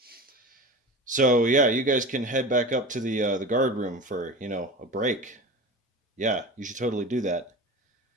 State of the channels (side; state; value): both; normal; correlation 0.31